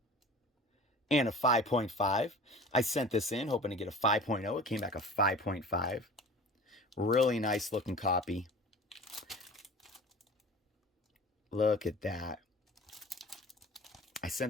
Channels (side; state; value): both; normal; correlation 0.40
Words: And a 5.5. I sent this in hoping to get a 5.0. It came back a 5.5. Really nice looking copy. Look at that. I